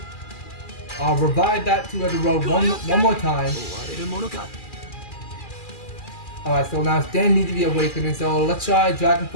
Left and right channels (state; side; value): late; right; 2.4 ms